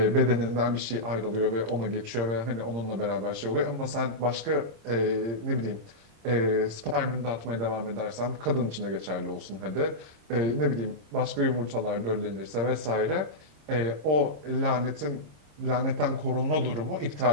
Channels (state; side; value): late; left; 26 ms